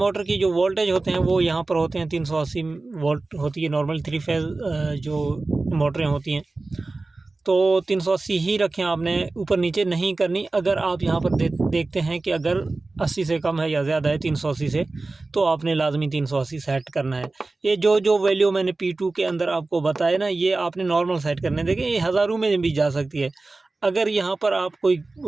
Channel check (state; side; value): quieter; left; 3.4 dB